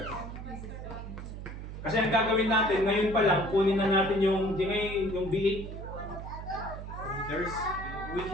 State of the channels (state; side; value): noise; right; hum, 9 dB below the sound